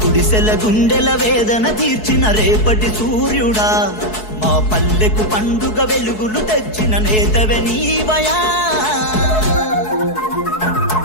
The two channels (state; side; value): late; right; 4.7 ms